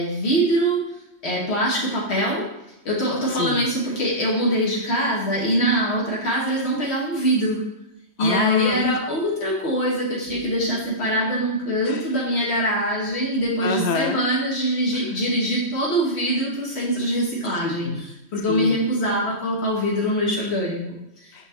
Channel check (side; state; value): right; late; 3.1 ms